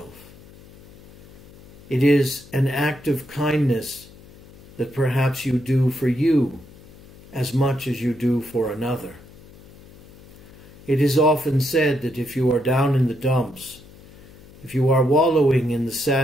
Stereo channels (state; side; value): noise; left; hum, 22 dB below the sound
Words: It is an act of kindness that perhaps you do for you as much as you do for another. It is often said that if you are down in the dumps, if you are wallowing in the